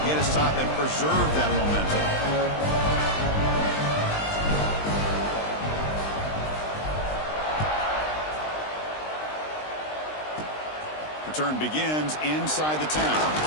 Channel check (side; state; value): right; late; 20 ms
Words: get a stop and preserve that momentum. Return begins inside the 10.